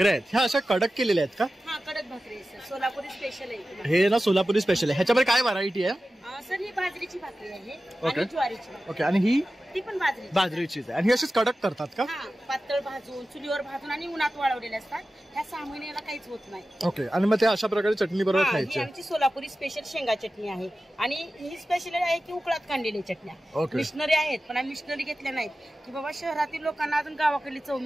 आहेत. ह्या अशा कडक केलेल्या आहेत का? हाँ, कडक भाकरी आहे सर. सोलापुरी स्पेशल आहे. हे ना सोलापुरी स्पेशल आहे. ह्याच्यामध्ये काय व्हरायटी आहे? सर ही बाजरीची भाकरी आहे ओके. आणि ज्वारीची भाकरी. ओके, आणि ही ती पण बाजरी बाजरीचीच आहे. आणि ही अशीच कडक करतात का? हा, पातळ भाजून चुलीवर भाजून आणि उन्हात वाळवलेले असतात. ह्या 6 महिन्याला काहीच होत नाही. ओके, आणि मग ते अशा प्रकारे चटणी बरोबर ही खायची. आमची सोलापुरी स्पेशल शेंगा चटणी आहे आणि ही स्पेशल आहे की उकळात काढलेल्या चटण्या. ओके. मिशनरी आहेत पण आम्ही मिशनरी घेतल्या नाहीत की बाबा शहरातील लोकांना अजून गावाकडली चव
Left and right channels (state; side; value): normal; both; correlation 0.94